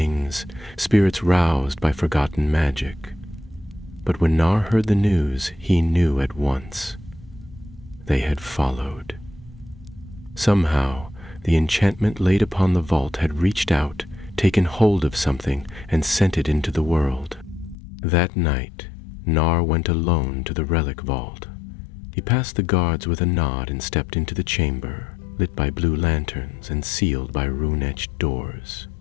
spirits roused by forgotten magic. But when Nar heard the news, he knew at once. They had followed. Somehow, the enchantment laid upon the vault had reached out, taken hold of something, and sent it into the world. That night, Nar went alone to the relic vault. He passed the guards with a nod and stepped into the chamber, lit by blue lanterns and sealed by rune-etched doors.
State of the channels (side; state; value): right; drops out; at 17.8 s